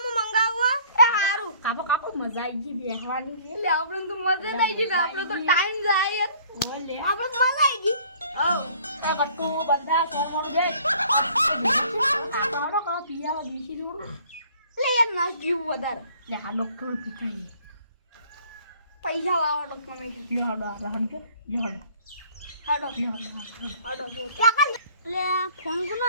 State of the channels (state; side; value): inverted; both; correlation -0.56